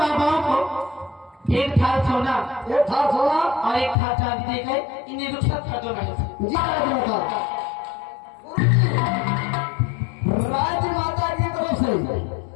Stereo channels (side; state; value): right; drops out; at 4.0 s